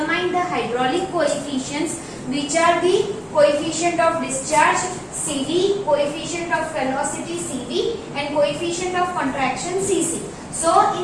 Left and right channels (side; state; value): both; identical; correlation 1.00